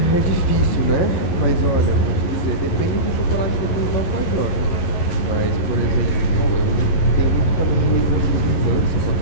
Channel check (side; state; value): right; late; 11 ms